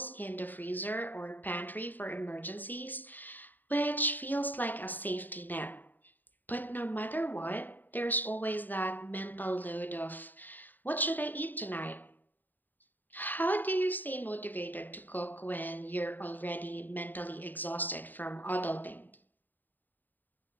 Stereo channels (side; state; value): right; late; 0.088 ms